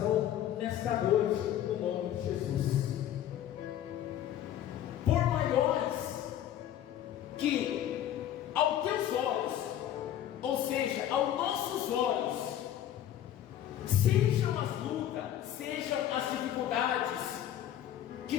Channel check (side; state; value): right; quieter; 11.3 dB